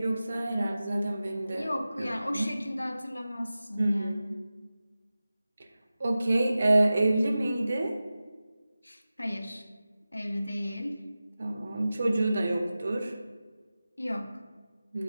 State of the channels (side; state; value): both; inverted; correlation -0.95